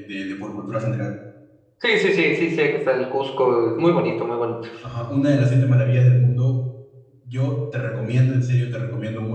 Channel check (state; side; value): identical; both; correlation 1.00